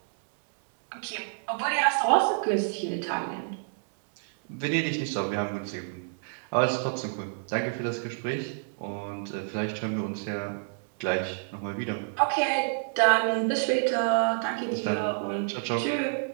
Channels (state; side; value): silent; left; digital silence